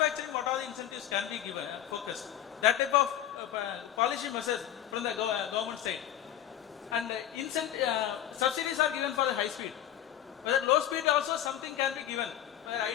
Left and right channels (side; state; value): right; quieter; 11.3 dB